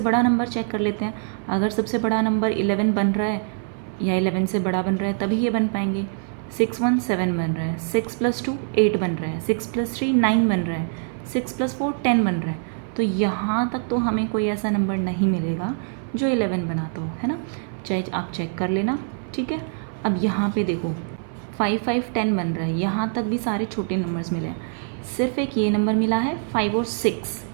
नंबर चेक कर लेते हैं। अगर सबसे बड़ा नंबर 11 बन रहा है या 11 से बड़ा बन रहा है तभी ये बन पाएंगे। 6 1 7 बन रहा है, 6 + 2 8 बन रहा है, 6 + 3 9 बन रहा है, 6 + 4 10 बन रहा है। तो यहाँ तक तो हमें कोई ऐसा नंबर नहीं मिलेगा जो 11 बनाता हो, है ना, चाहे आप चेक कर लेना, ठीक है। अब यहाँ पे देखो 5 5 10 बन रहा है, यहाँ तक भी सारे छोटे नंबर्स मिले हैं, सिर्फ एक ये नंबर मिला है 5 और 6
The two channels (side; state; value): left; silent; 58 dB below the other